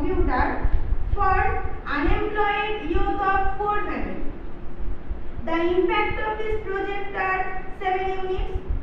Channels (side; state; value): both; identical; correlation 1.00